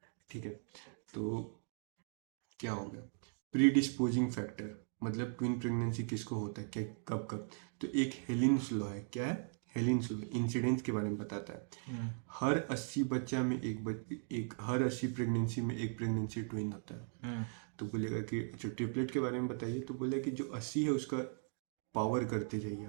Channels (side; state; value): left; silent; 52 dB below the other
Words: ठीक है। तो क्या हो गया, प्रीडिस्पोजिंग फैक्टर, मतलब ट्विन प्रेगनेंसी किसको होता है, क्या कब कब। तो एक हेलिन्स लॉ है, क्या है, हेलिन्स लॉ इंसिडेंस के बारे में बताता है। हर 80 बच्चा में एक हर 80 प्रेगनेंसी में एक प्रेगनेंसी ट्विन होता है। तो बोलेगा कि अच्छा ट्रिपलेट के बारे में बताइए, तो बोला कि जो 80 है उसका पावर करते जाइए